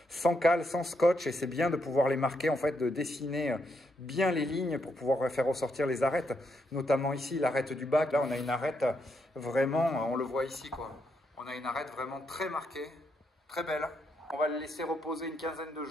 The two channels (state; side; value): normal; both; correlation 0.79